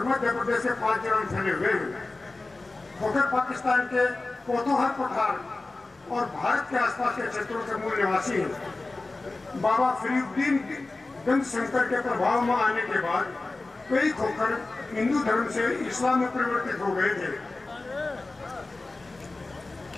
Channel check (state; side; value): quieter; right; 3.3 dB